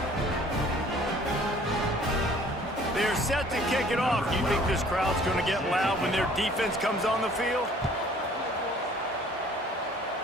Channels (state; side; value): normal; both; correlation 0.54